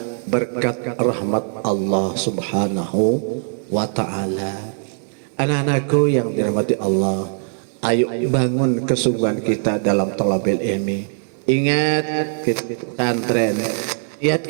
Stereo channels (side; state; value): left; silent; digital silence